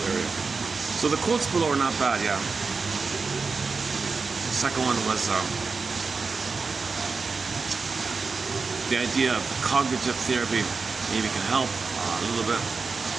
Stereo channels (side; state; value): left; quieter; 4.5 dB